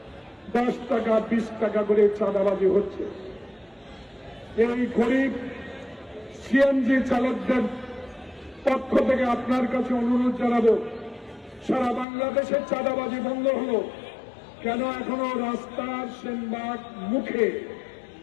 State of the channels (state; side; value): drops out; right; at 12.1 s